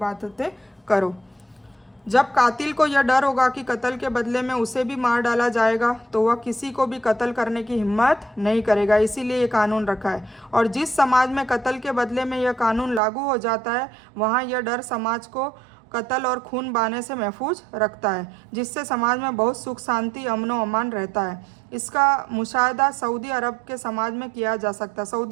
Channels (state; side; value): drops out; left; at 13.0 s